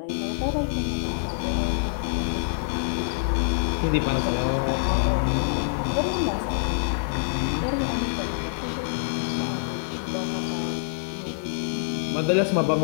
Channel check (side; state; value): right; silent; digital silence